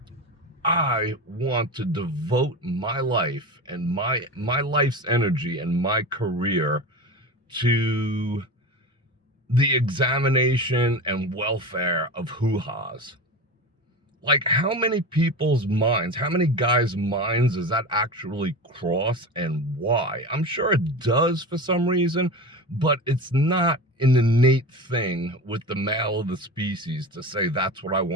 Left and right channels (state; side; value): normal; both; correlation 0.28